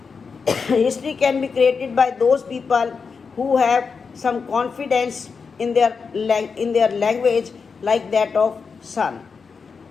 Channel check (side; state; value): right; quieter; 5.3 dB